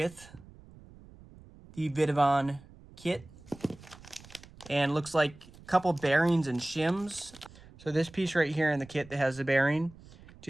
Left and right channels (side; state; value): right; noise; rumble, 21 dB below the sound